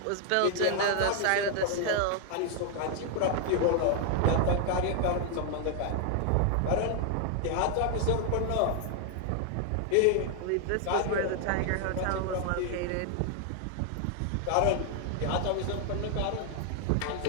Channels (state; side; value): different; both; correlation 0.00